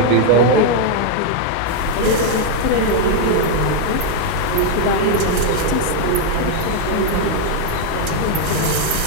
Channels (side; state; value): both; different; correlation 0.00